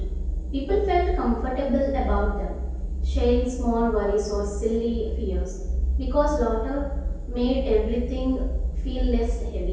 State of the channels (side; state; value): both; identical; correlation 1.00